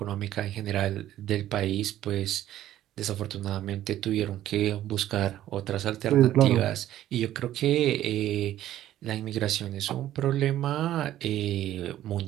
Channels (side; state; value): left; quieter; 13.0 dB